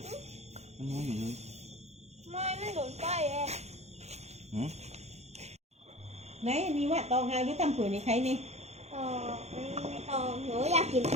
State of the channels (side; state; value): left; late; 0.31 ms